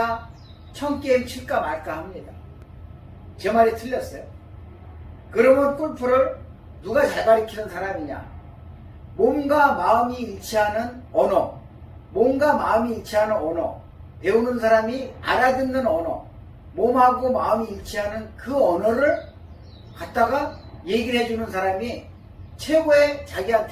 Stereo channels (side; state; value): both; identical; correlation 1.00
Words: 1000게임 칠까 말까 합니다. 제 말이 틀렸어요. 그러면 골프를 누가 잘 가르치는 사람이냐? 몸과 마음이 일치하는 언어, 몸과 마음이 일치하는 언어, 배우는 사람이 알아듣는 언어, 몸하고 마음이 일치하는 그 언어를 갖다가 얘기를 해주는 사람이